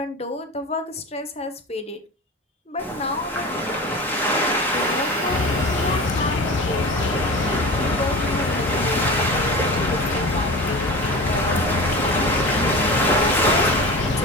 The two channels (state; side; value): normal; both; correlation 0.31